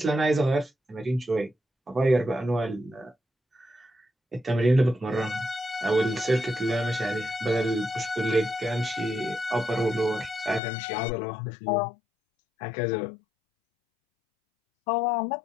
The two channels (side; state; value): right; drops out; at 10.6 s